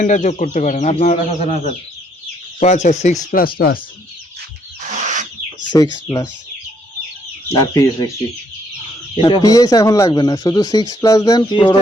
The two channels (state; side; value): normal; both; correlation 0.70